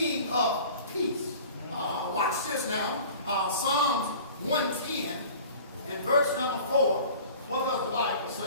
of peace. Watch this now. Psalms 110 and verse number 4. What does the Bible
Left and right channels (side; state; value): both; inverted; correlation -0.43